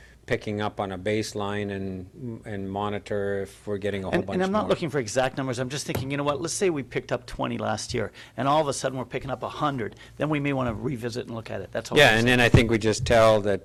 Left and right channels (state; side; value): identical; both; correlation 1.00